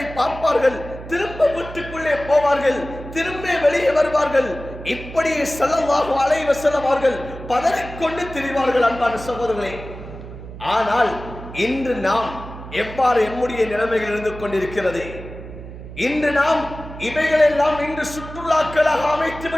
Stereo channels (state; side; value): noise; right; hum, 13 dB below the sound